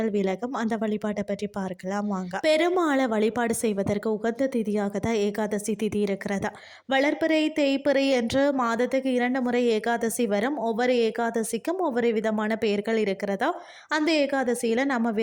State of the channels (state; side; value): identical; both; correlation 1.00